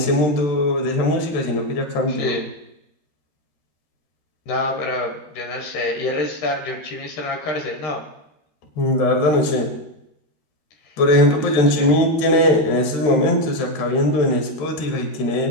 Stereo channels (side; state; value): right; late; 13 ms